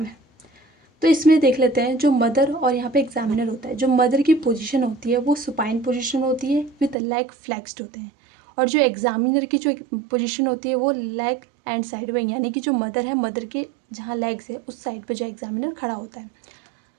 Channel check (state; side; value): drops out; left; at 7.0 s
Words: है। तो इसमें देख लेते हैं जो मदर और यहाँ पे एग्जामिनर होता है। जो मदर की पोजीशन होती है वो सुपाइन पोजीशन होती है विद लेग फ्लेक्स्ड होते हैं, और जो एग्जामिनर की जो पोजीशन होती है वो लेग एंड साइड में, यानी कि जो मदर है, मदर के जहाँ लेग्स है उस साइड पे जो एग्जामिनर खड़ा होता है।